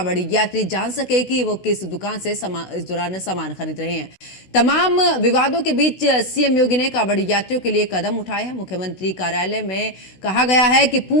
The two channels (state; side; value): late; right; 16 ms